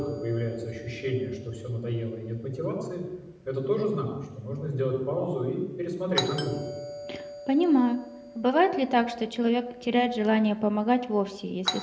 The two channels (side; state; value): both; identical; correlation 1.00